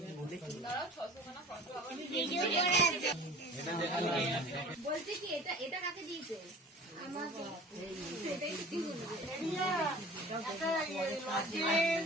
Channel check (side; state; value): both; normal; correlation 0.43